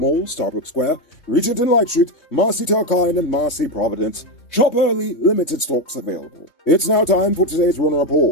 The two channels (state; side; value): late; right; 3.2 ms